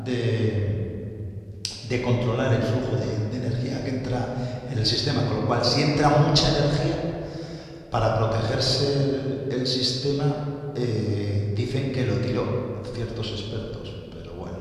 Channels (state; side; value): identical; both; correlation 1.00